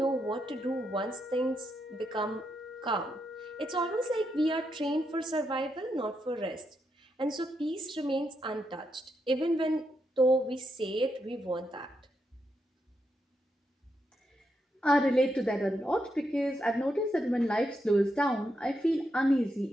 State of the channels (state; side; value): normal; both; correlation 0.82